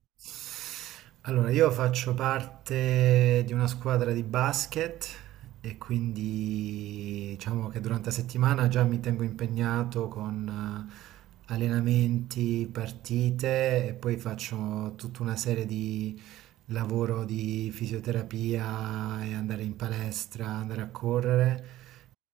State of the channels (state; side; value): quieter; left; 14.7 dB